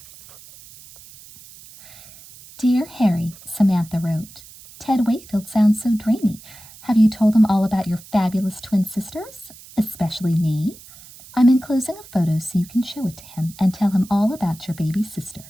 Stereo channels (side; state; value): right; noise; hiss, 20 dB below the sound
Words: "Dear Harry," Samantha wrote, "Ted Wakefield sounds so dreamy. Have you told him all about your fabulous twin sisters, especially me? I'm enclosing a photo so you can show it to him and tell him all about your baby